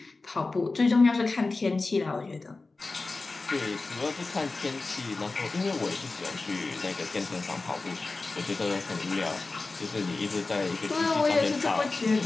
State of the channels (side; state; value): right; quieter; 3.6 dB